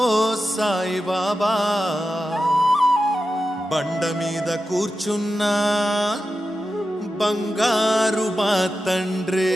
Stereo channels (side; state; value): both; normal; correlation 0.91